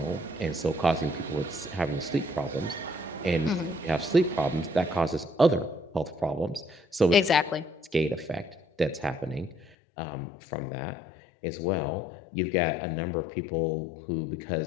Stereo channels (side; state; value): right; drops out; at 9.7 s